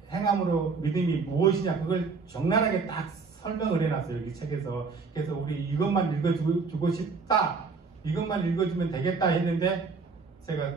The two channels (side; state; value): left; quieter; 4.7 dB